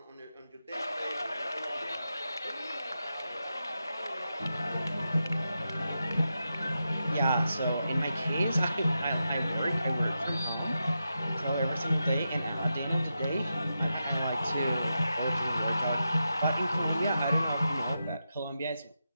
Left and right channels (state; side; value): inverted; both; correlation -0.88